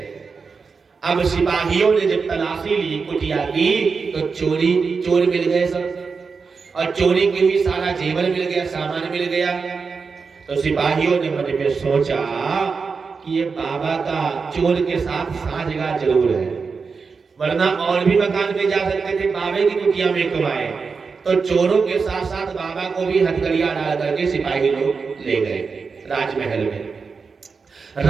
अब सिपाहियों ने जब तलाशी ली, कुटिया की, तो चोर मिल गए सब। और चोरी के भी सारा जेवर मिल गया, सामान मिल गया। तो सिपाहियों ने मन में सोचा कि ये बाबा का चोर के साथ साझगार जरूर है, वरना और भी मकान में जा सकते थे, बाबे की कुटिया में क्यों आए। तो चोरों के साथ साथ बाबा को भी हथकड़ियां डाल करके सिपाही लोग ले गए राजमहल में।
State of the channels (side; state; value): left; quieter; 5.1 dB